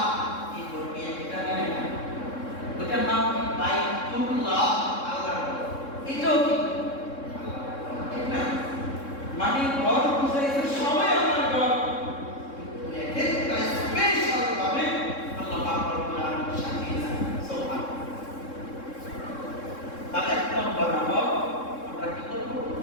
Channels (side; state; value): right; late; 3.7 ms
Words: এই করবে এটা নেই না, ওটার নাম কি বাইতুল্লাহ আল্লাহর ঘর। এটাও কি ঠিক না? মানে ঘর বুঝাইছে সবাই আল্লাহর ঘর, কিন্তু একটা স্পেশাল ভাবে আল্লাহ পাক রব্বুল আলামিন সাজিয়েছেন। সুবহানাল্লাহ। তাহলে এক নম্বর আমল আমরা কি করব?